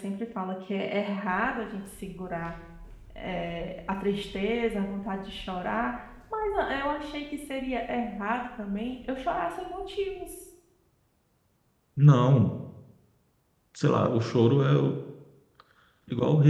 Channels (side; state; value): both; identical; correlation 1.00